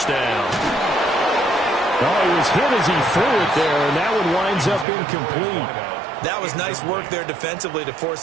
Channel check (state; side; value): drops out; left; at 4.9 s